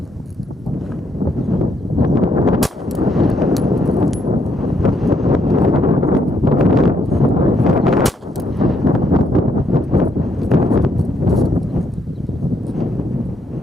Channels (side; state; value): both; normal; correlation 0.74